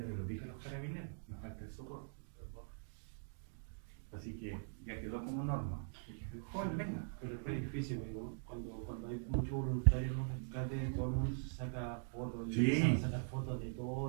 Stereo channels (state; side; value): silent; left; digital silence